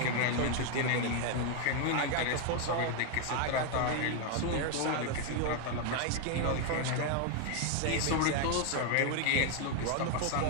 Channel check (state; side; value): different; both; correlation 0.01